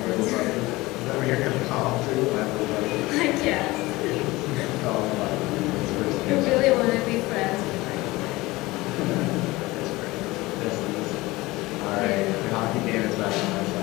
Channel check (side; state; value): right; quieter; 20.5 dB